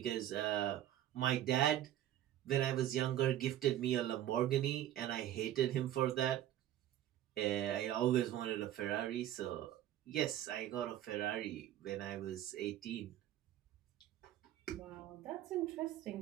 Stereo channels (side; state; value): left; quieter; 12.3 dB